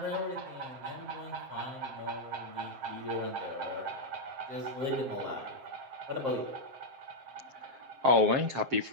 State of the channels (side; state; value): left; late; 7.5 ms